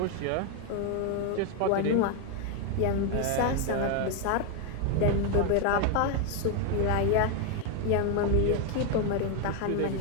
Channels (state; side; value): different; both; correlation 0.01